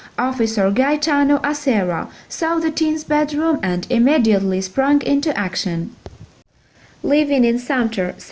Officer Gaetano Acerra saw the teen's bedroom and immediately sprang into action. Living in Sumter,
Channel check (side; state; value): both; identical; correlation 1.00